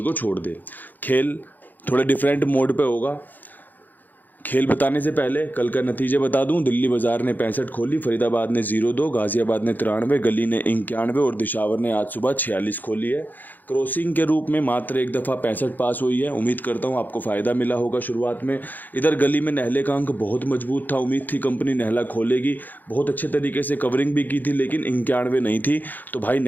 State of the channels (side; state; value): right; late; 0.085 ms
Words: को छोड़ दे। खेल थोड़े डिफरेंट मोड पे होगा। खेल बताने से पहले कल का नतीजे बता दूं। दिल्ली बाजार ने 65 खोली, फरीदाबाद ने 0-2, गाजियाबाद ने 93, गली ने 91 और दिशावर ने आज सुबह 46 खोली है। क्रॉसिंग के रूप में मात्र एक दफ़ा 65 पास हुई है। उम्मीद करता हूं आपको फ़ायदा मिला होगा शुरुआत में। इधर गली में नहले का अंक बहुत मजबूत था। उम्मीद थी कंपनी नहला खोलेगी, बहुत अच्छे तरीके से कवरिंग भी की थी, लेकिन 91 नहीं थी। तो भाई